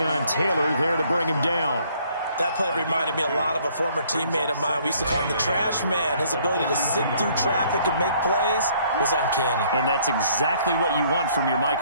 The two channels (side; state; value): both; inverted; correlation -0.62